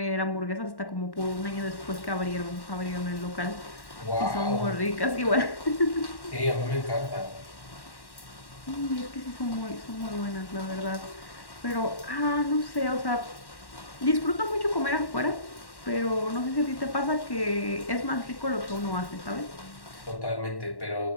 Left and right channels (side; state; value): right; late; 1.1 ms